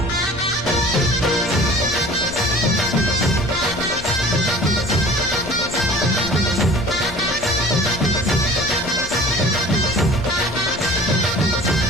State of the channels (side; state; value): left; noise; rumble, 14 dB below the sound